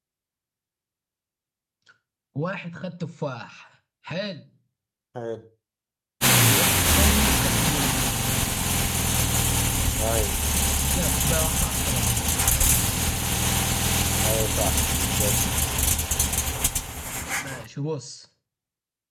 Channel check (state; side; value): identical; both; correlation 1.00